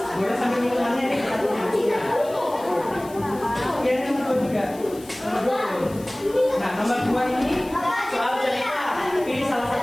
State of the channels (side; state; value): left; noise; hiss, 21 dB below the sound